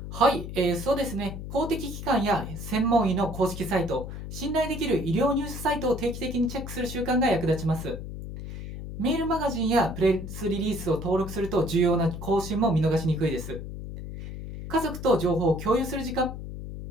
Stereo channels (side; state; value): left; noise; hum, 9 dB below the sound